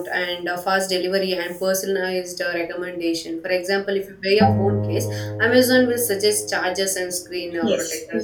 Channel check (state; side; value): identical; both; correlation 1.00